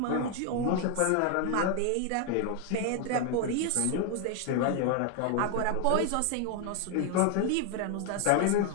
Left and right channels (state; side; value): different; both; correlation 0.01